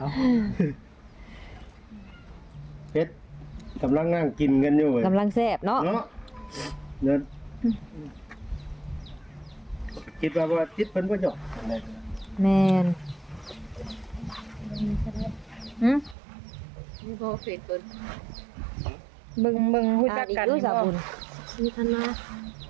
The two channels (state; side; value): drops out; left; at 16.2 s